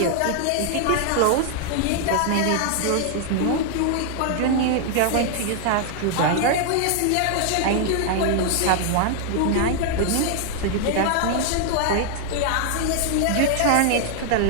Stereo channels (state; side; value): different; both; correlation 0.00